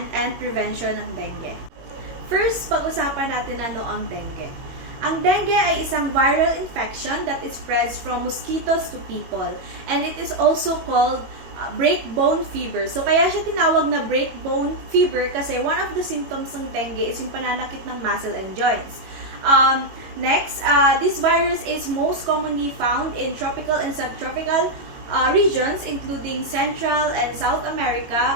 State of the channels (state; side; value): late; left; 22 ms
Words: and prevention ng dengue. First, pag-usapan natin ano ang dengue. Ang dengue ay isang viral infection that spreads from mosquitoes to people. And it is also called breakbone fever. So, kaya siya tinawag na breakbone fever kasi one of the symptoms ng dengue is yung pananakit ng muscle and joints. Next, this virus is most commonly found in tropical and subtropical regions including Central and South